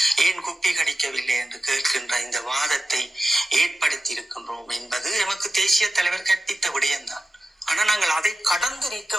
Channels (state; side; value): normal; both; correlation 0.93